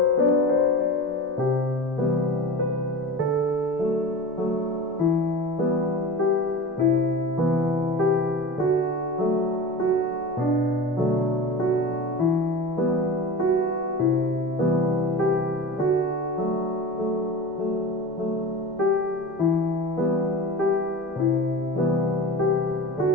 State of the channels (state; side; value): noise; left; rumble, 30 dB below the sound